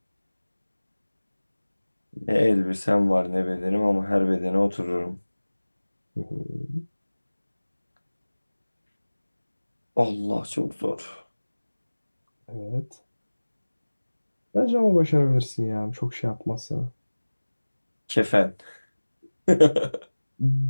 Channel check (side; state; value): both; inverted; correlation -1.00